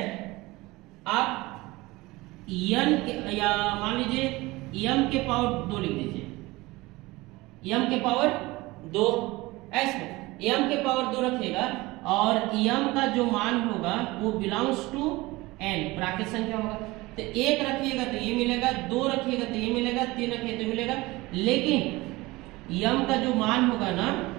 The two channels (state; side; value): quieter; left; 21.0 dB